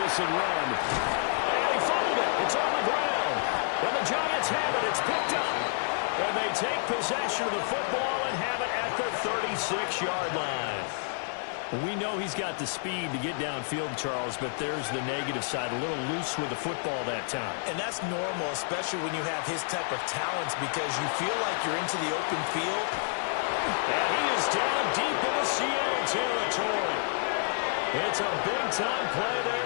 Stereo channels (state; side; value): silent; right; 57 dB below the other